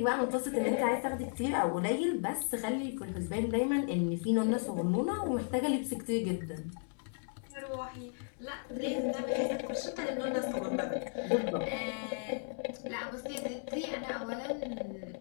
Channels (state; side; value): silent; right; 55 dB below the other